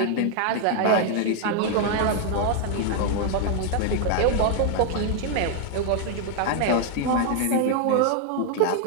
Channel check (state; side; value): different; both; correlation 0.00